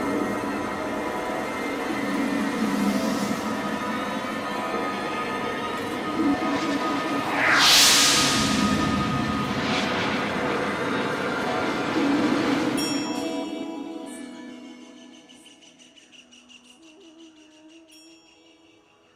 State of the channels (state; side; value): identical; both; correlation 1.00